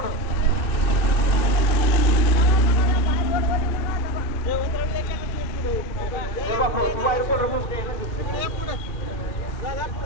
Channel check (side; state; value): right; late; 2.6 ms